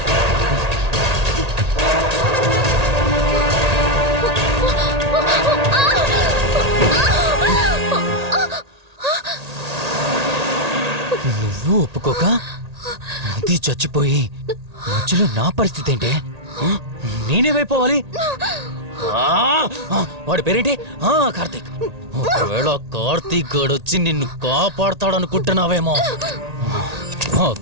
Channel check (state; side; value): late; left; 1.8 ms